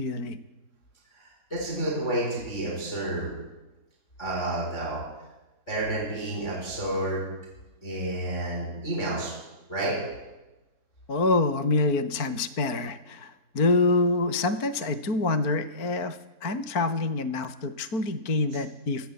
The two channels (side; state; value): right; late; 4.4 ms